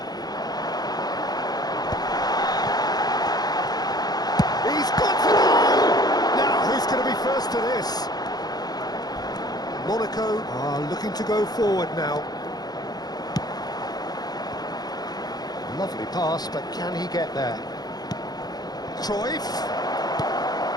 He's got to go! Now, who's going to be first to this? Monaco are looking to go forward now. Lovely pass, but can he get there? Cruyff.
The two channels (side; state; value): right; late; 0.19 ms